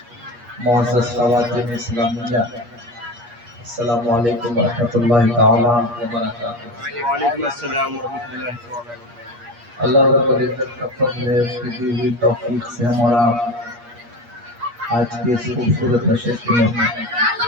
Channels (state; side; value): late; left; 8.4 ms